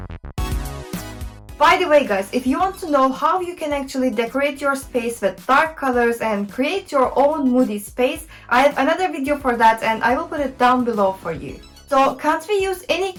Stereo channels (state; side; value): identical; both; correlation 1.00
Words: By the way guys, if you want to know how you can actually decorate your space with dark colors and create your own moody space, I have another video for that and I will put it down below for you. So can't we use any